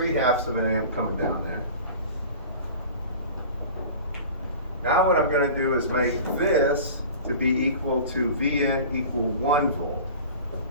of an amp coming down there. Now what I'm going to do is make this to be equal to Vn equal 1 volt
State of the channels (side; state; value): both; inverted; correlation -0.39